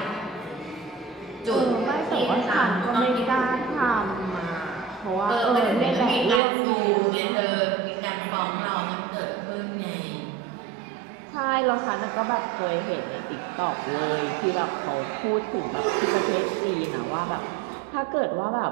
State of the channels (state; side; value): drops out; left; at 6.4 s